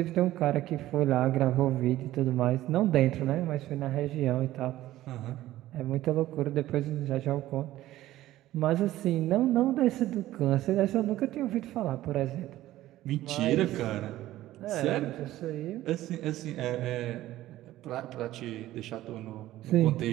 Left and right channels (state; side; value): quieter; left; 15.0 dB